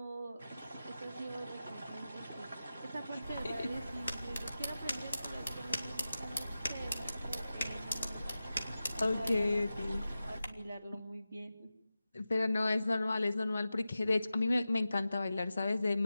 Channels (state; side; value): inverted; both; correlation -0.94